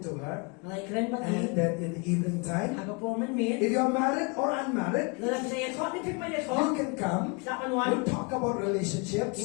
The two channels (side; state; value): right; quieter; 30.8 dB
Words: to her. Naikren ba And din? then in the evening time, Aga po man min. if you're married or unmarried, Lalagay ako. Ni Pipay you ako. can come. Sapan We'll wan. talk about relationships.